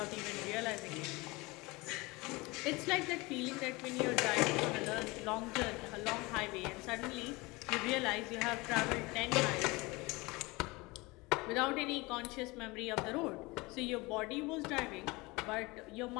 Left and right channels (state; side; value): quieter; right; 23.7 dB